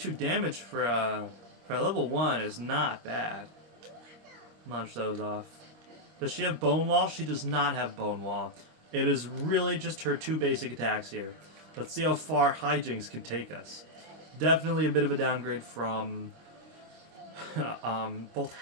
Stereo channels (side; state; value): left; late; 25 ms